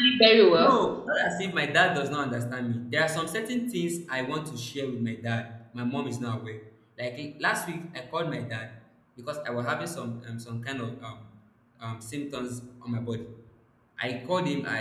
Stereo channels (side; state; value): both; identical; correlation 1.00